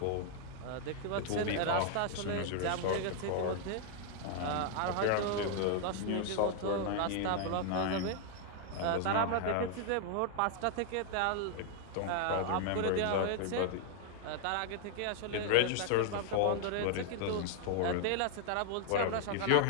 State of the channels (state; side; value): different; both; correlation 0.00